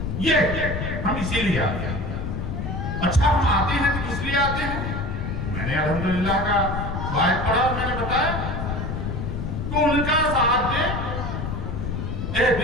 یہ ہم اسی لیے آتے ہیں۔ اچھا ہم آتے ہیں تو کس لیے آتے ہیں؟ میں نے الحمدللہ کا وعد پڑھا اور میں نے بتایا کہ ان کا ساتھ دے،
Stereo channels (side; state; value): left; noise; rumble, 3 dB below the sound